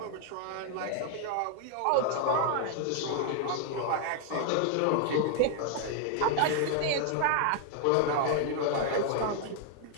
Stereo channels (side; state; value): both; different; correlation 0.00